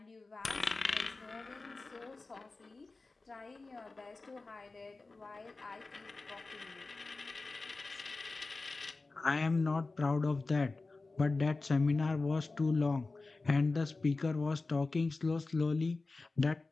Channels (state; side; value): quieter; right; 3.6 dB